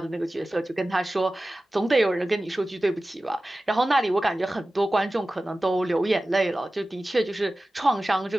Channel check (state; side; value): normal; both; correlation 0.96